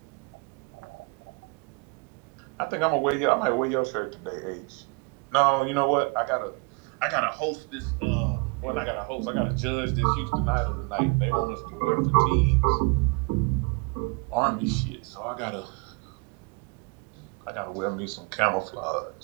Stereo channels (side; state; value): left; quieter; 31.9 dB